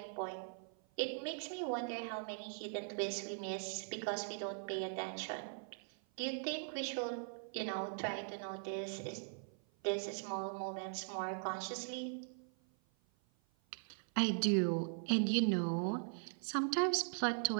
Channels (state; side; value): silent; left; 51 dB below the other